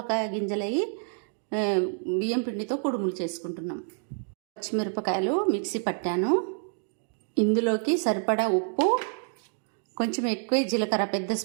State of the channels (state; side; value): silent; left; 59 dB below the other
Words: గింజలవి బియ్యం పిండితో కుడుములు చేసుకుంటున్నాం. పచ్చిమిరపకాయలు మిక్సీ పట్టాను. ఇందులోకి సరిపడా ఉప్పు, కొంచెం ఎక్కువ జీలకర్ర, పెద్ద